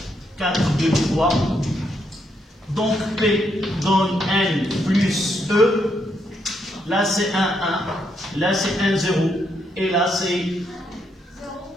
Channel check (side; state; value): both; normal; correlation 0.77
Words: 4, 2, 3. Donc P donne N plus E. Là c'est 1, 1. Là c'est 1, 0. Et là c'est